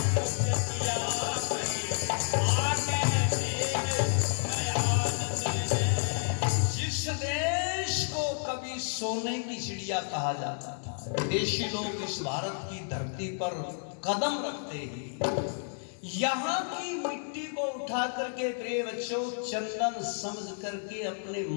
सोने की चिड़िया कहा जाता था, विदेशी लोग इस भारत की धरती पर कदम रखते ही यहाँ की मिट्टी को उठा करके प्रिय बच्चों चंदन समझ करके अपने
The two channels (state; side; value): silent; right; 57 dB below the other